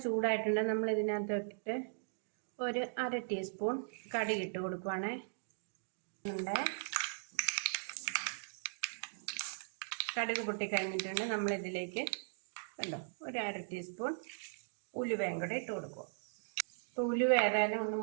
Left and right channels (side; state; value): left; silent; digital silence